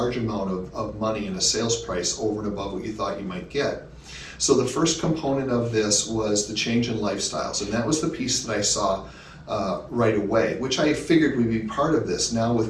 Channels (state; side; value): identical; both; correlation 1.00